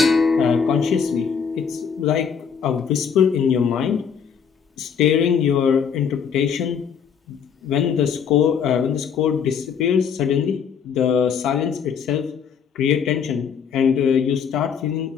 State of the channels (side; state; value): right; quieter; 7.0 dB